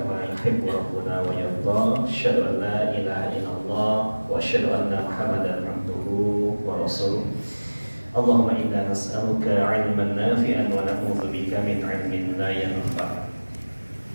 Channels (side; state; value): both; inverted; correlation -1.00